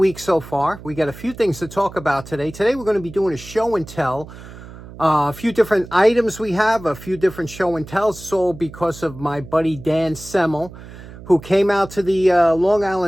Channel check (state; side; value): noise; right; hum, 16 dB below the sound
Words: so far. We got a few things to talk about today. Today we're going to be doing a show and tell. A few different items we have, a few different show and tells. So because of my buddy Dan Semel, who came out to the Long